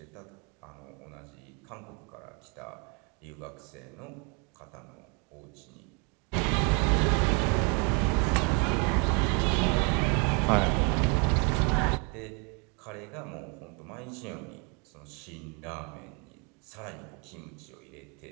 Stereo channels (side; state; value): left; quieter; 33.6 dB